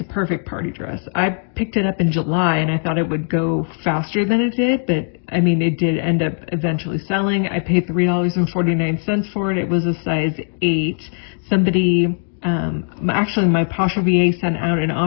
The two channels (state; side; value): silent; right; 59 dB below the other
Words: perfect party dress. I picked it up in July and I thought it would go faster than it did, but I mean, it did end up eventually selling. I paid $3.49 for it. It was a size 8. Somebody, actually my Pasha VA sent out an